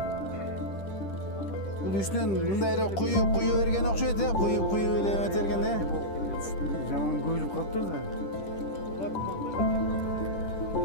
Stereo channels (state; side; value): late; right; 10 ms